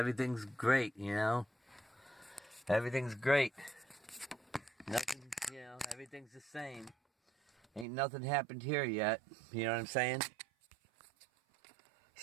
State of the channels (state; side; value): drops out; left; at 7.9 s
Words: great, Everything's great. Nothing, everything's the same. Ain't nothing happened here yet. You know what I'm saying?